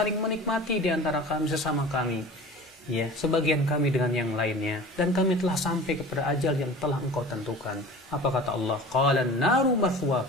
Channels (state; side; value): normal; both; correlation 0.38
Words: menikmati di antara kami sesama kami. Ya, sebagian kami dengan yang lainnya, dan kami telah sampai kepada ajal yang telah Engkau tentukan. Apa kata Allah? Qalan naru